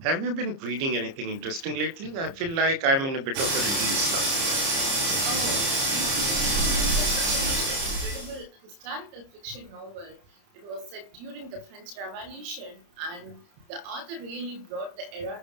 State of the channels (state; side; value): late; left; 30 ms